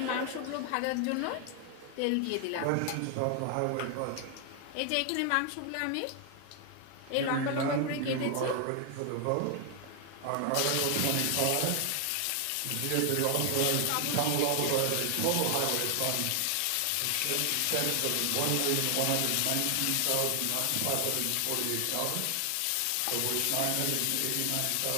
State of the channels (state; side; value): different; both; correlation 0.00